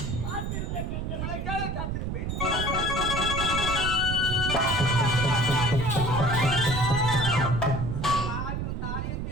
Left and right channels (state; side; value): noise; right; rumble, 3 dB below the sound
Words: காத்திருந்த கண்கள் உங்களுக்காக காத்திருப்பேன். தாரியம்